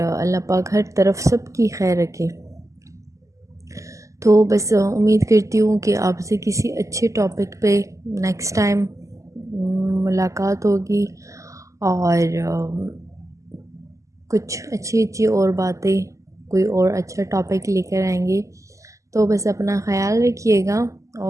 پاک ہر طرف سب کی خیر رکھے۔ تو بس امید کرتی ہوں کہ آپ سے کسی اچھے ٹاپک پہ نیکسٹ ٹائم ملاقات ہوگی، اور کچھ اچھی اور باتیں، کوئی اور اچھا ٹاپک لے کر آئیں گے۔ تو بس اپنا خیال رکھیے گا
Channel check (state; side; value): late; left; 0.16 ms